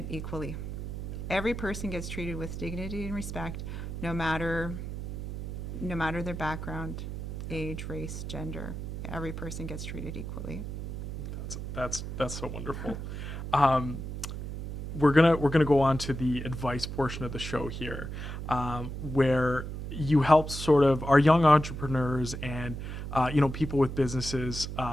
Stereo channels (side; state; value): right; noise; hum, 6 dB below the sound